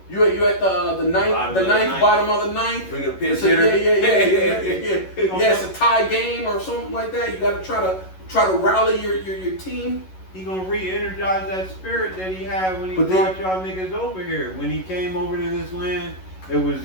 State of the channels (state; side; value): late; right; 11 ms